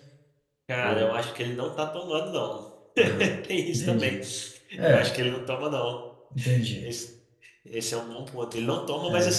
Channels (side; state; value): both; identical; correlation 1.00